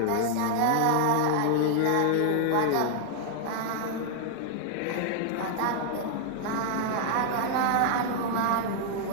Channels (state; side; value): different; both; correlation -0.01